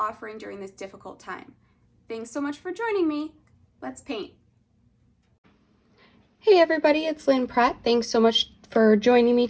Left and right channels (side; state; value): both; identical; correlation 1.00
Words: during this difficult time. Thanks so much for joining me. Let's paint. Hey everybody, it's Lynn Pratt. Thanks so much for joining me